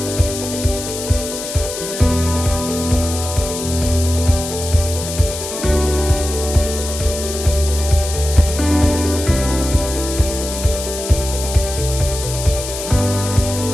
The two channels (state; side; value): noise; left; hiss, 7 dB below the sound